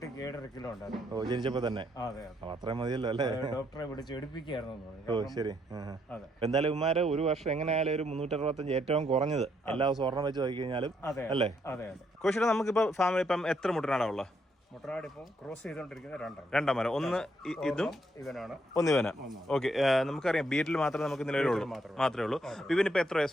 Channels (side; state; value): both; normal; correlation 0.74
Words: 7.5 കിലോ ഉണ്ടായിരുന്നു. ഓ, ജനിച്ചപ്പോ തന്നെ. അതെ, അത്രയും മതിയല്ലോ അല്ലേ? ഡോക്ടറെ വിളിച്ച് എടുപ്പിക്കായിരുന്നു. ഓ ശരി. എന്തായാലും ഇവന്മാര് ഒരു വർഷം എങ്ങനെയായാലും ഒരു 365 ഏറ്റവും കുറഞ്ഞത് എല്ലാ ദിവസവും ഒരെണ്ണം വെച്ച് നോക്കി കഴിഞ്ഞാലും അല്ലേ? അതെ. കോശിയുടെ നമുക്കിപ്പോ ഫാമിലി ഇപ്പം എത്ര മുട്ടനാടാ ഉള്ളത്? മുട്ടനാട് ഇപ്പം ക്രോസ് ചെയ്തോണ്ടിരിക്കുന്നത് രണ്ടാം മരം. ഒന്ന് ഇതും ഇവനാണ്. ഒന്ന് ഇവനാ. ഓക്കെ, നമുക്കറിയാം ബീറ്റിൽ മാത്രമേ നമുക്ക് നിലവിലുള്ളൂ, മാത്രമേ ഉള്ളൂ. ഇവനിപ്പോ എത്ര